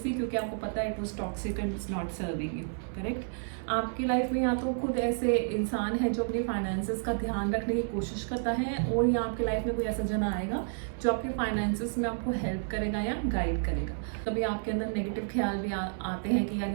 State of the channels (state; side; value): silent; left; 57 dB below the other